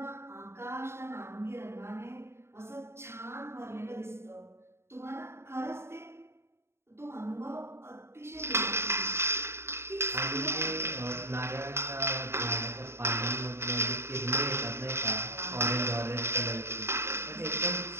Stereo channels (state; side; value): late; left; 0.12 ms